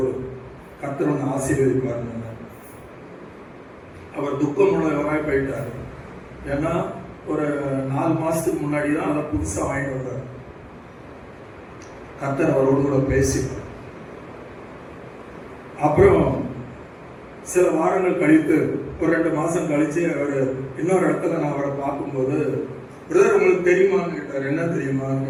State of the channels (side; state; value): both; identical; correlation 1.00